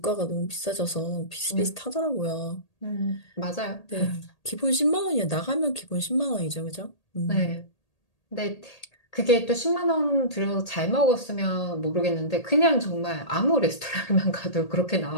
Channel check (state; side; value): late; right; 1.8 ms